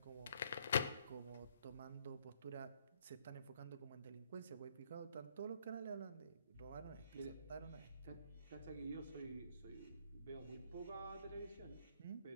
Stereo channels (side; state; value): both; inverted; correlation -0.68